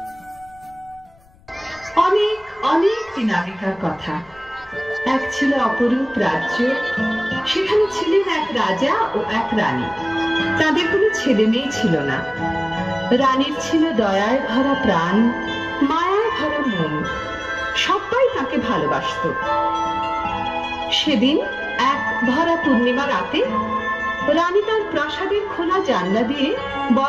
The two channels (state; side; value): noise; left; rumble, 28 dB below the sound